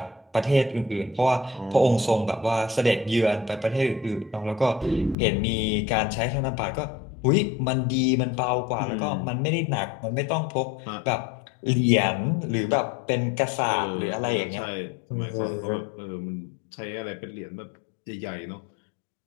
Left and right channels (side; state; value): right; drops out; at 5.2 s